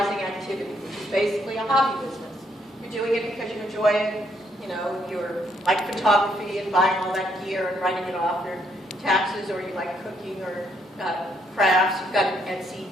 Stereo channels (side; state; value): both; normal; correlation 0.72